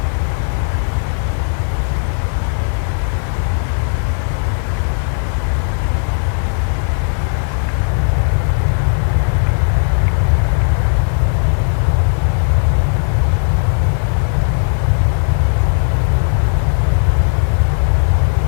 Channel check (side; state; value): right; silent; digital silence